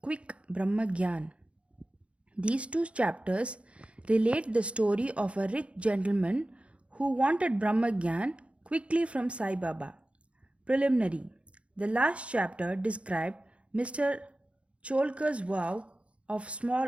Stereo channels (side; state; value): left; late; 0.061 ms